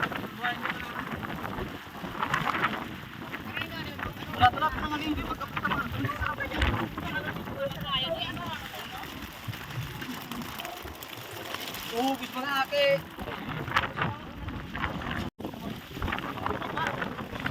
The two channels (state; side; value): identical; both; correlation 1.00